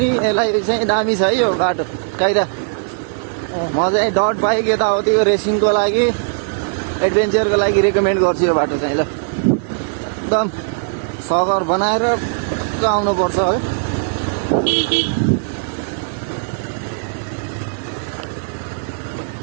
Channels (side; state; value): left; silent; 56 dB below the other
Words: यसलाई चाहिँ दामी छ है यो बाटो काइदा म चाहिँ डट बाइक यताउति यो रेसिङको लागि एडभेन्चरको लागि रेकमेन्ड गर्छु यो बाटो चाहिँ ल एकदम सगर बनाएर आउनुपर्छ है